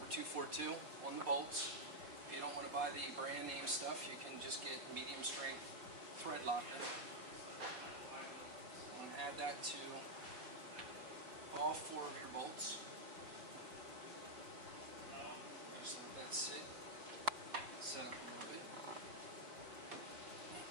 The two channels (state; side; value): late; left; 4.2 ms